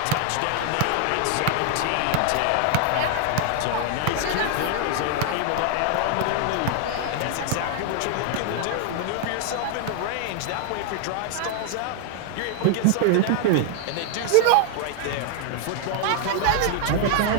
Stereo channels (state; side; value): different; both; correlation 0.00